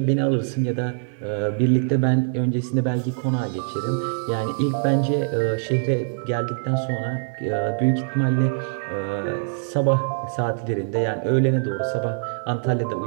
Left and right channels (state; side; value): silent; left; digital silence